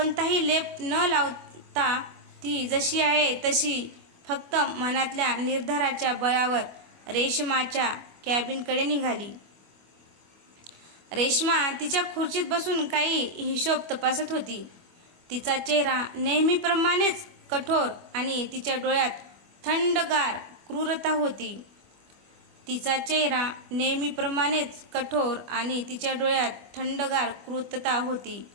लेप न लावता ती जशी आहे तशी फक्त मनातल्या निर्धाराच्या बळावर रेश्माच्या कॅबिनकडे निघाली. रेश्मा तिच्या खुर्चीत बसून काही हिशोब तपासत होती. तिचा चेहरा नेहमीप्रमाणेच कठोर आणि तिच्या डोळ्यात थंडगार क्रूरता होती.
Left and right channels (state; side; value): late; left; 25 ms